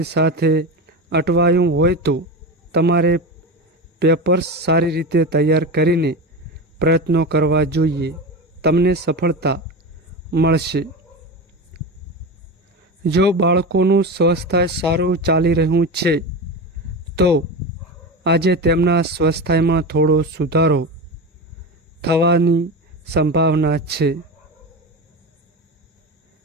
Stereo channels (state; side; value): normal; both; correlation 0.23